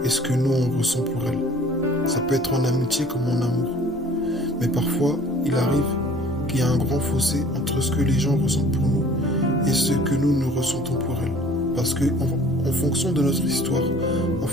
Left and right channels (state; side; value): normal; both; correlation 0.51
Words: et ce que nous on ressent pour elle. Ça peut être en amitié comme en amour. Mais parfois, il arrive qu'il y a un grand fossé entre ce que les gens ressentent pour nous et ce que nous ressentons pour elles. Parce que en fonction de notre histoire, en